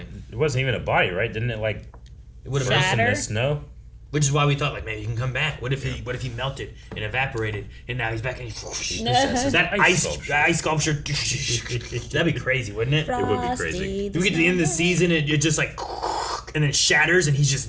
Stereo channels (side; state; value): both; identical; correlation 1.00